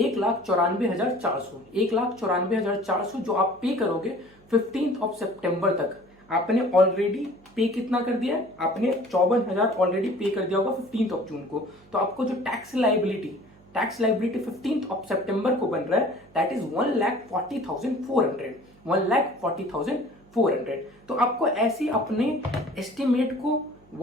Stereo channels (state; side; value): noise; right; hum, 28 dB below the sound